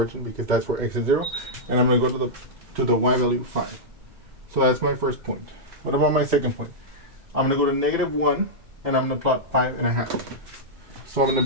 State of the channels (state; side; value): late; left; 2.2 ms